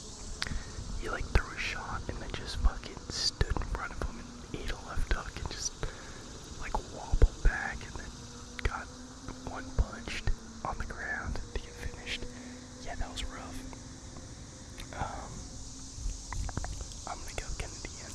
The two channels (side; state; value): both; identical; correlation 1.00